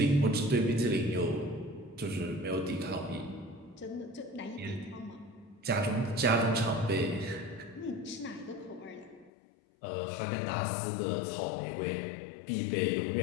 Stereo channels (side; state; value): right; drops out; at 9.3 s